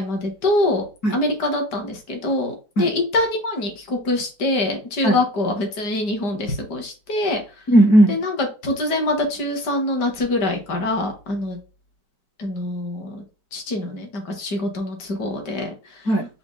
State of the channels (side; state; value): right; late; 5.0 ms